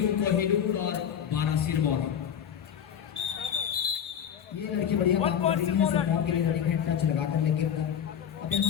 कोहिनूर और 12 सिरमौर। ये लड़की बढ़िया काम कर रही है सिरमौर के लिए रनिंग हेड टच लगाकर, लेकिन अब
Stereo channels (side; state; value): right; quieter; 8.6 dB